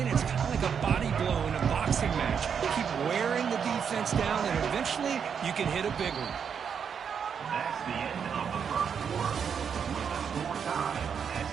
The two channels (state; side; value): quieter; left; 7.1 dB